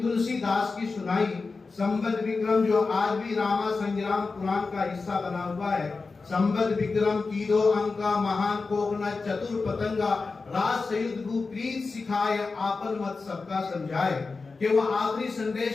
की सुनाई। संबत विक्रम जो आज भी रामा संग्राम पुराण का हिस्सा बना हुआ है। संबत विक्रम कीदो अंका महान कोकना चतुर पतंगा, राज सयुद्ध भू प्रीत सिखाए आपन मत सबका समझाए। कि वो आखिरी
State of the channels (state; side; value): quieter; right; 4.2 dB